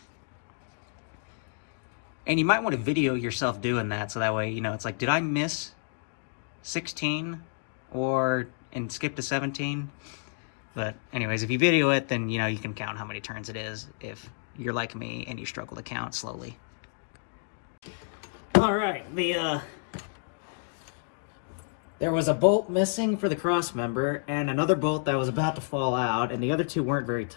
And you might want to video yourself doing that, so that way, you know, it's like, did I miss 16 and skip to 17? But anyways, if you video it, then, you know, you can count how many turns it is if you're like me and you struggle to count slowly. All right, there was a bolt missing for the cross member and another bolt that was about to fall out, and the other two weren't very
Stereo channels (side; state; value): right; silent; digital silence